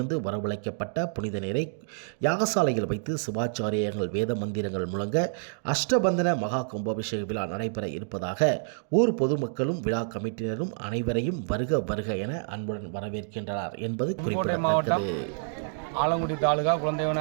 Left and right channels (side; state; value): left; silent; digital silence